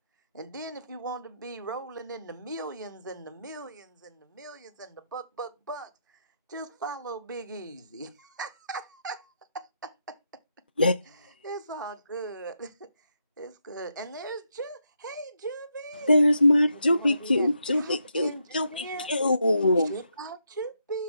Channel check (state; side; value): inverted; both; correlation -0.81